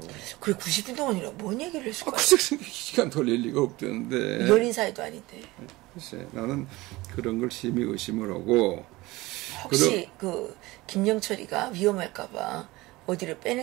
그래 90분 동안이라 뭔 얘기를 했을까? 시간 걸릴 리가 없대는데. 연인 사이도 아닌데. 글쎄 나는 그런 걸 심히 의심을 하고. 혹시 그 김영철이가 위험할까봐 어디를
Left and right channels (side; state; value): left; quieter; 20.3 dB